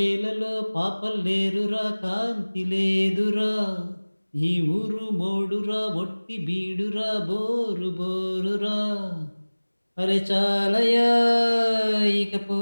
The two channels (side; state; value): both; inverted; correlation -1.00